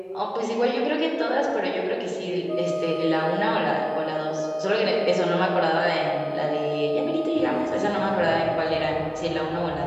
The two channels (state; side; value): identical; both; correlation 1.00